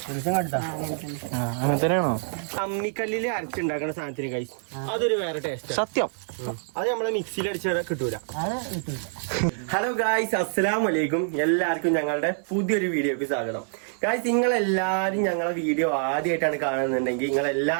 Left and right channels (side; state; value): left; silent; 61 dB below the other